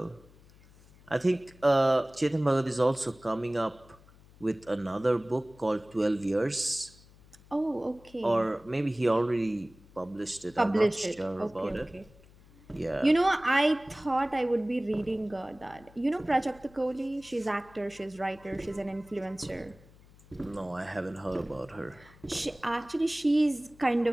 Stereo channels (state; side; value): noise; left; hum, 25 dB below the sound